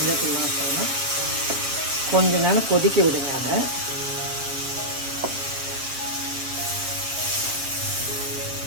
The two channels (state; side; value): late; left; 7.6 ms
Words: வாசனை. கொஞ்ச நேரம் கொதிக்க விடுங்க. அதை